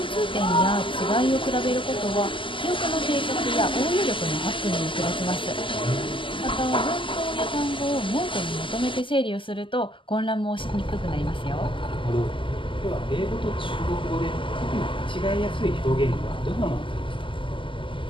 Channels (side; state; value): right; late; 0.25 ms